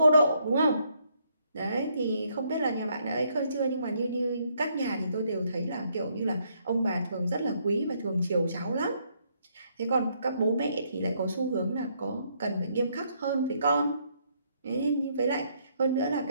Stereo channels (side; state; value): both; inverted; correlation -0.72